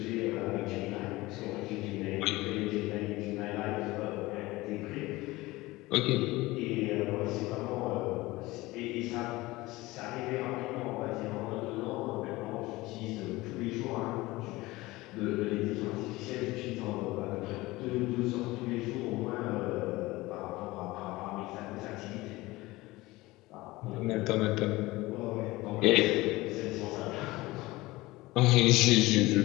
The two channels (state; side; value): quieter; right; 20.0 dB